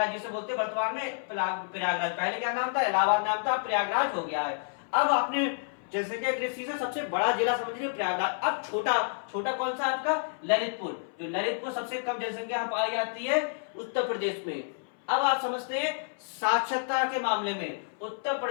जिसे बोलते हैं वर्तमान में प्रयागराज। पहले क्या नाम था? इलाहाबाद नाम था, प्रयागराज हो गया है। अब आपने जनसंख्या की दृष्टि से सबसे बड़ा जिला समझ लिया प्रयागराज। अब छोटा कौन सा आपका? ललितपुर। जो ललितपुर सबसे कम जनसंख्या पाई जाती है उत्तर प्रदेश में। अब आप समझते हैं साक्षरता के मामले में उत्तर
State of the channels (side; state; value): right; silent; 58 dB below the other